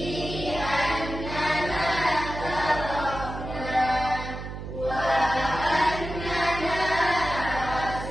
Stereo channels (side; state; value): right; noise; hum, 8 dB below the sound